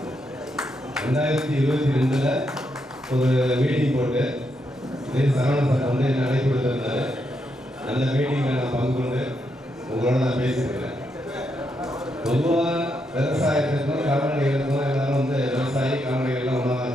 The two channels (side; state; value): both; normal; correlation 0.80